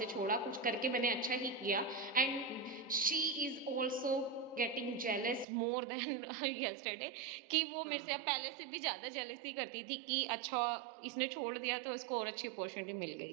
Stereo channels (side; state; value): left; drops out; at 5.5 s